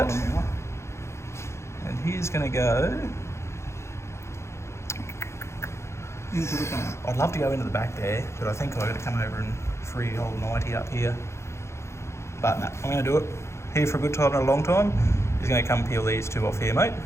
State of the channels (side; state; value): right; late; 0.13 ms